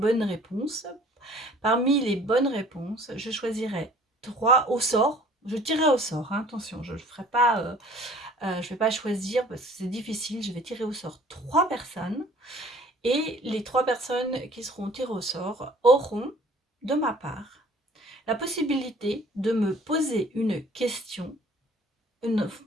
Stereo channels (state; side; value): normal; both; correlation 0.52